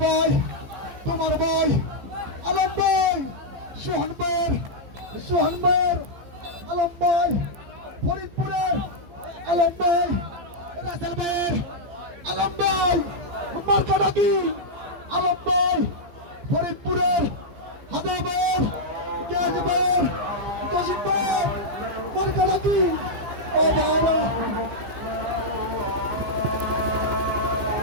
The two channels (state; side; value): late; left; 14 ms